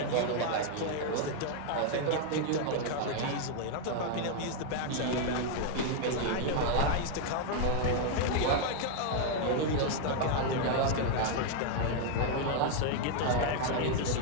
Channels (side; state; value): both; different; correlation 0.00